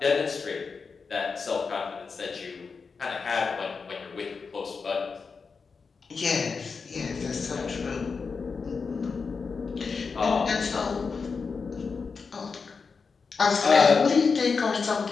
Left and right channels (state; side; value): quieter; right; 5.0 dB